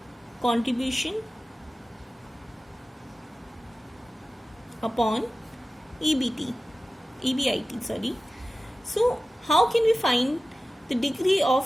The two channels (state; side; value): normal; both; correlation 0.95